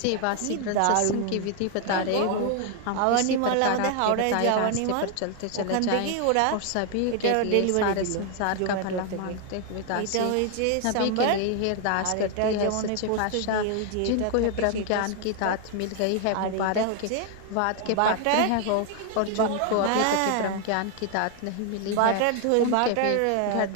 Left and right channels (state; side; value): different; both; correlation 0.00